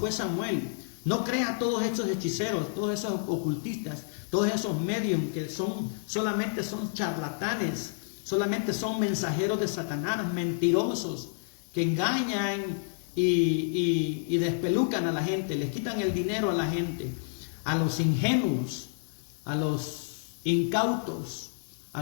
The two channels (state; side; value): silent; right; digital silence